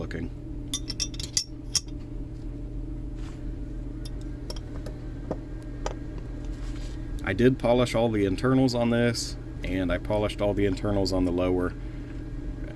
I did polish all the internals on this, and I polished all the internals on the lower.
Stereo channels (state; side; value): identical; both; correlation 1.00